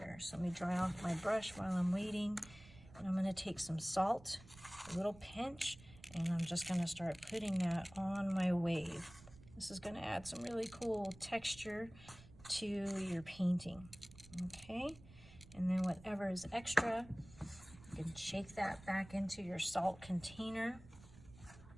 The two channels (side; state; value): right; noise; rumble, 20 dB below the sound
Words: So let me dry off my brush while I'm waiting, and I'm going to take some salt, a little pinch, and I'm just going to start putting that on my wave. This is going to add some really cool texture to your painting. Okay, and then whatever is extra, you can shake that back into your salt container.